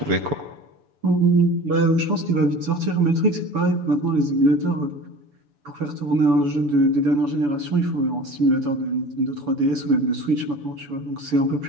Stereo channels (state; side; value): late; left; 7.0 ms